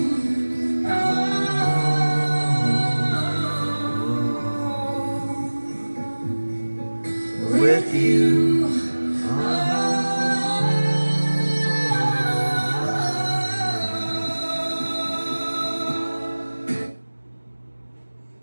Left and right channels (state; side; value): inverted; both; correlation -1.00